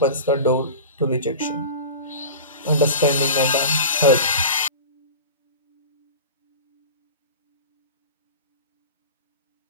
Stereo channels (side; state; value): both; inverted; correlation -0.32